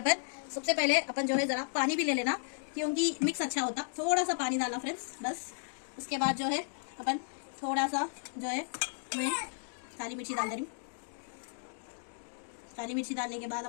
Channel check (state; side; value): silent; right; digital silence